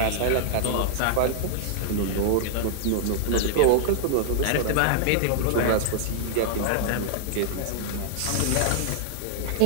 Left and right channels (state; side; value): different; both; correlation -0.01